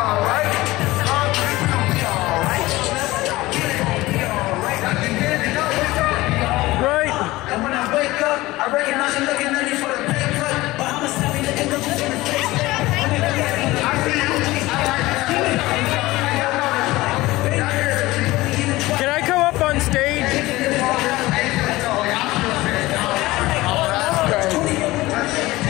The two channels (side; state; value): right; quieter; 19.0 dB